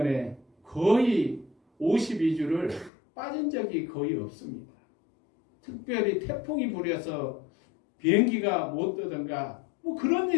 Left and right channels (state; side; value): drops out; right; at 2.9 s